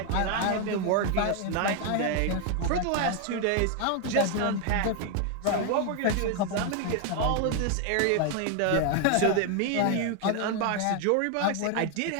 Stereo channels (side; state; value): both; different; correlation 0.01